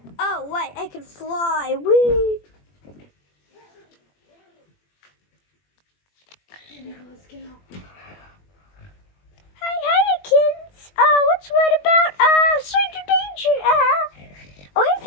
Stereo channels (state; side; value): late; right; 21 ms